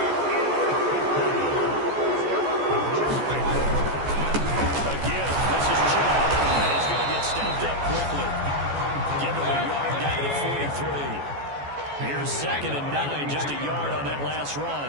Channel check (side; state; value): left; late; 14 ms